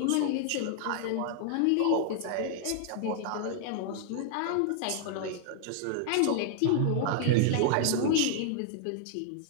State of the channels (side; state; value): both; different; correlation 0.00